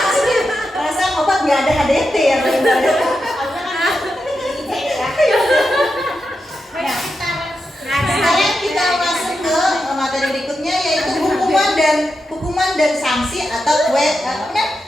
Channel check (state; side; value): normal; both; correlation 0.88